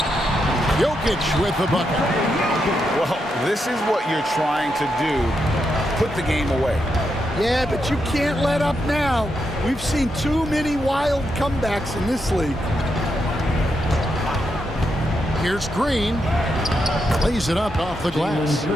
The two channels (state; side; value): normal; both; correlation 0.83